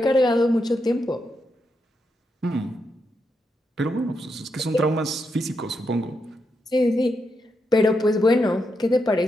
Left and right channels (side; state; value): both; normal; correlation 0.83